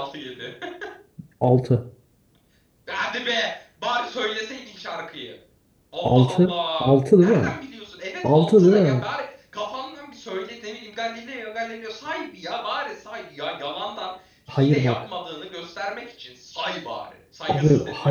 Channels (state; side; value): identical; both; correlation 1.00